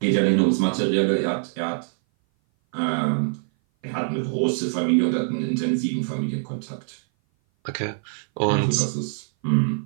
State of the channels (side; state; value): left; silent; 58 dB below the other